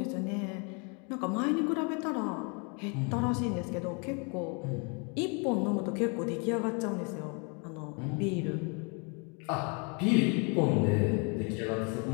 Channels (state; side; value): quieter; right; 34.5 dB